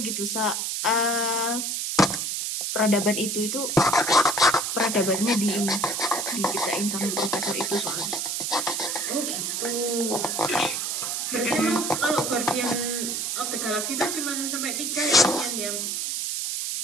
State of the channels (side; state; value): right; noise; hiss, 1 dB below the sound